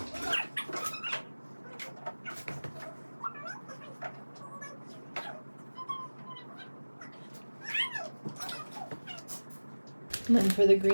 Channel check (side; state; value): both; inverted; correlation -1.00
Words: And then for the